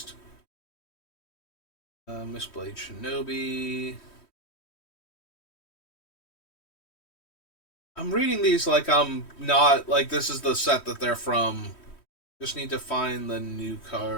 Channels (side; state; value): right; late; 3.1 ms